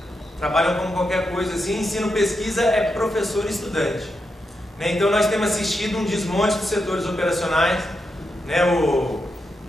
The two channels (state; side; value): normal; both; correlation 0.85